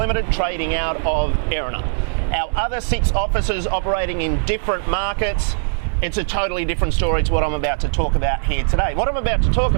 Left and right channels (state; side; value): silent; left; digital silence